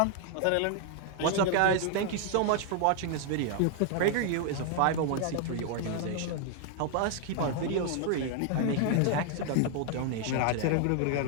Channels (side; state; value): both; different; correlation 0.00